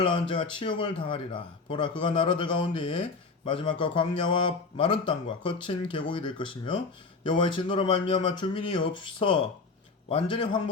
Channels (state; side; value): quieter; right; 4.2 dB